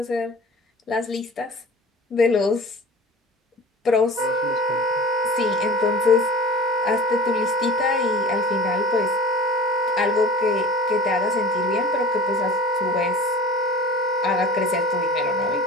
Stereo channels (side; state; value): both; normal; correlation 0.40